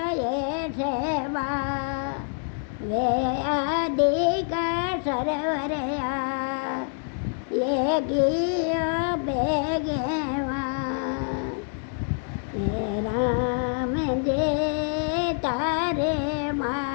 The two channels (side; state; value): right; silent; 61 dB below the other